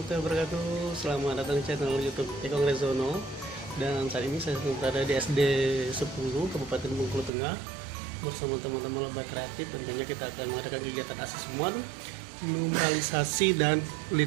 wabarakatuh. Selamat datang di channel YouTube Ekong Rezono. Dan saat ini saya berada di SD 10 Kabupaten Bengkulu Tengah bersama teman-teman lomba kreatif. Tentunya kita akan mengadakan kegiatan asesmen, numeralisasi dan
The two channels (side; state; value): left; drops out; at 7.3 s